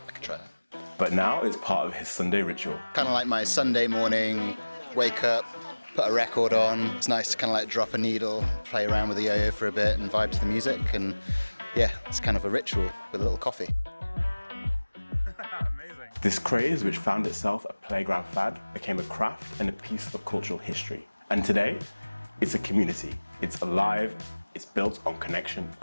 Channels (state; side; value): inverted; both; correlation -1.00